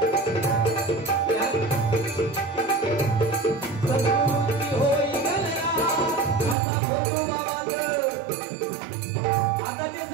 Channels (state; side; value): drops out; left; at 6.6 s